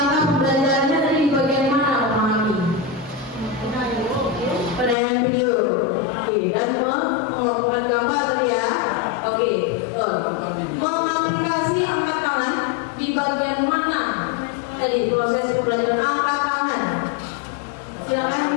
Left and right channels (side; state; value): right; drops out; at 5.0 s